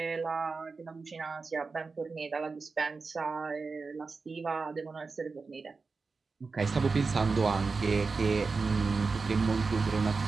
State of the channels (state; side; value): quieter; left; 4.4 dB